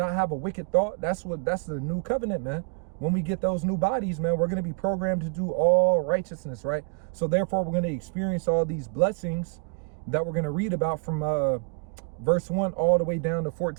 have a wicked thought. That's the new covenant, man. When we get those new bodies, man, we're going to be programmed to do all righteousness. Right. So therefore, we're going to experience all these blessings that we're going to read about from verse 1 all the way down to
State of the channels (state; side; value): quieter; left; 38.4 dB